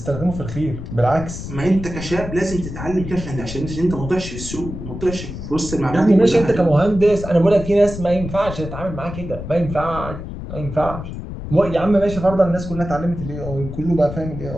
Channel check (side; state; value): left; noise; rumble, 9 dB below the sound